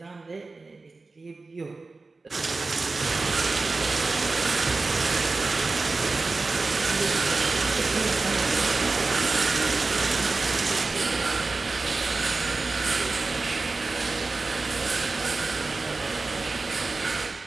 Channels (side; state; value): left; quieter; 3.7 dB